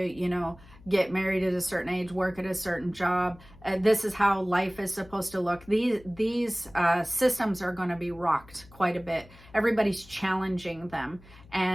know, get married at a certain age, work at a certain job. This is how life is supposed to look. These systems are going to be rocked quite a bit. Everybody's challenging them.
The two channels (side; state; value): left; noise; hum, 23 dB below the sound